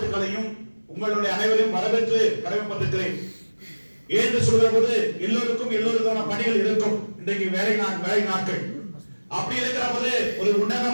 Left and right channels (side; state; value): both; inverted; correlation -1.00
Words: உங்களுடைய அனைவரையும் வரவேற்று கடமைப்பட்டிருக்கிறேன். ஏன்று சொல்கிற போது எல்லோருக்கான பணிகள் இருக்கும். இன்றைக்கு வேலை நாட்கள் அப்படி இருக்கிற போது ஒரு